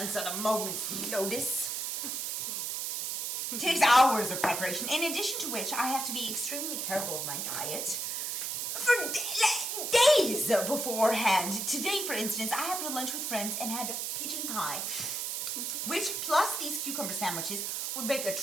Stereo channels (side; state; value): right; noise; hiss, 2 dB below the sound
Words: at a moment's notice. It takes hours of preparation, in addition to which I have to be extremely careful of my diet for days beforehand. Today, for instance, I happened to lunch with friends and had pigeon pie, which plus these cucumber sandwiches would make a